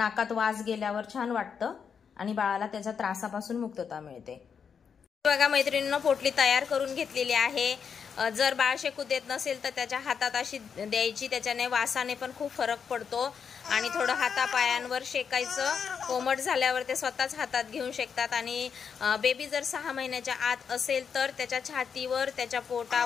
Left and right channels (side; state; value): right; quieter; 6.7 dB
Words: वास गेल्यावर छान वाटतं आणि बाळाला त्याच्या त्रासापासून मुक्तता मिळते। बघा मैत्रिणींनो, पोटली तयार करून घेतलेली आहे। जर बाळ शेकू देत नसेल तर त्याच्या हातात अशी द्यायची, त्याच्याने वासाने पण खूप फरक पडतो आणि थोडं हातापायांवर शेकायचं, कोमट झाल्यावर ते स्वतःच हातात घेऊन शेकतात आणि बेबी जर 6 महिन्याच्या आत असेल तर त्याच्या छातीवर, त्याच्या